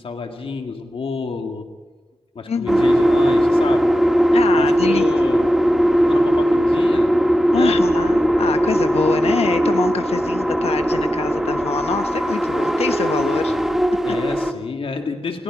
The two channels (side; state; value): both; normal; correlation 0.91